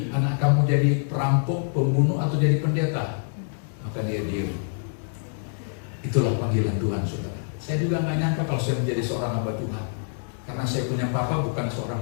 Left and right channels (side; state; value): right; silent; digital silence